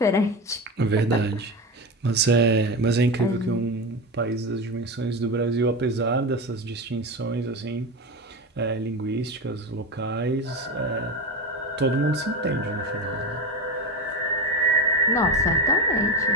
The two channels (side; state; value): both; normal; correlation 0.20